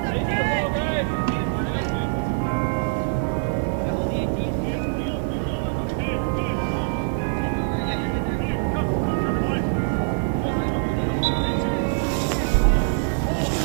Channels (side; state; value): left; silent; 57 dB below the other